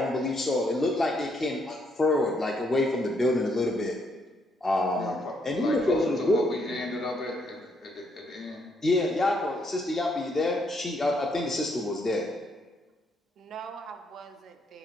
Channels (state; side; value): normal; both; correlation 0.73